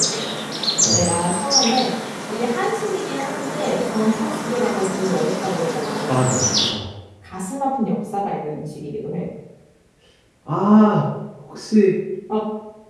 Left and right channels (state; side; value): identical; both; correlation 1.00